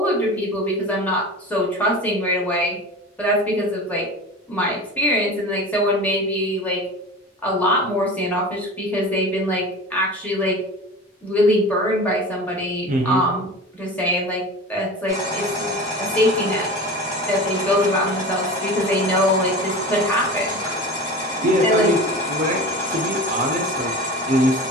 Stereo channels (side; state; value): both; normal; correlation 0.33